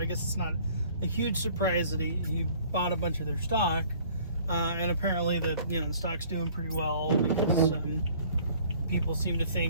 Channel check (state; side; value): inverted; both; correlation -0.54